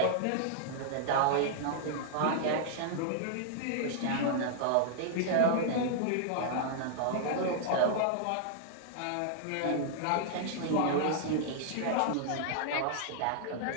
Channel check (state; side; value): different; both; correlation -0.01